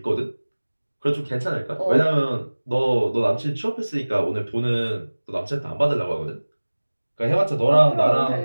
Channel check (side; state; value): both; inverted; correlation -1.00